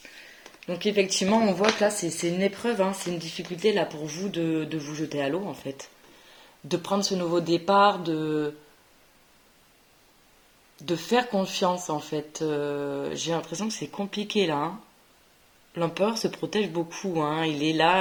Donc effectivement, on voit que là, c'est une épreuve, hein, c'est une difficulté là pour vous de vous jeter à l'eau en fait. De prendre ce nouveau départ, de faire confiance en fait. J'ai l'impression que c'est compliqué là. Hein. L'empereur se protège beaucoup. Hein. Il est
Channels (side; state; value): both; identical; correlation 1.00